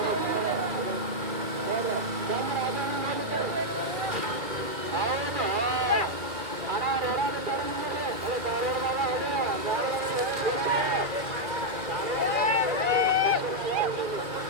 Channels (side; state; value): left; late; 2.2 ms